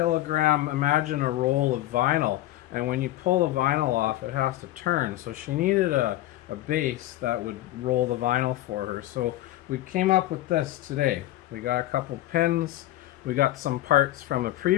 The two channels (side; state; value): right; quieter; 15.3 dB